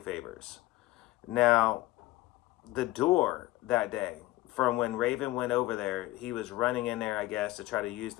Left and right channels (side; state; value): right; quieter; 17.8 dB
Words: Now, the door that day, from when Raven went over there, he was running in there, I guess, to try to use